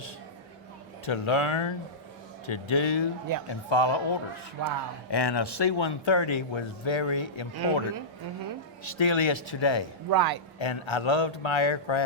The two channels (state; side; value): normal; both; correlation -0.16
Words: to learn, to do, Yep. and follow orders. Wow. And a C-130 was very important. Still is today. Right. And I loved my